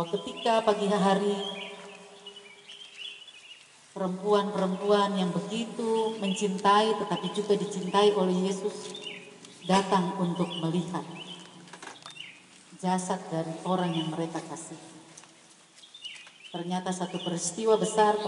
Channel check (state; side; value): identical; both; correlation 1.00